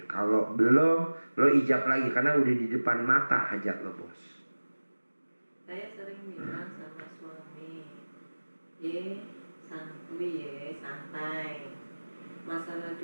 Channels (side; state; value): both; inverted; correlation -1.00